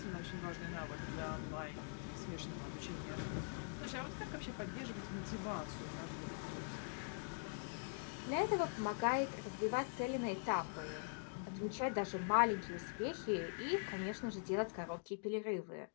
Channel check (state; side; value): silent; right; digital silence